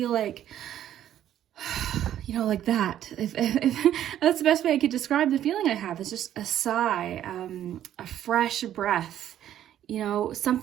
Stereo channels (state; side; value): quieter; left; 11.3 dB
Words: like, you know, like that. If that's the best way I could describe the feeling I have. It's just a sigh, a fresh breath, you know,